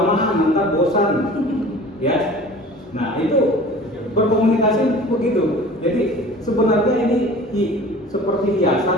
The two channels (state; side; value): normal; both; correlation 0.42